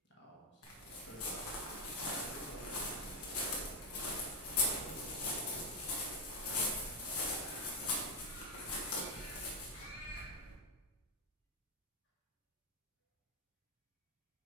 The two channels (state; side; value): normal; both; correlation 0.07